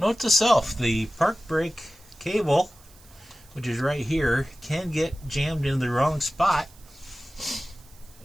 to self, the park brake cable, which is right here, can get jammed in the wrong spot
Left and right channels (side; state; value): right; noise; hiss, 26 dB below the sound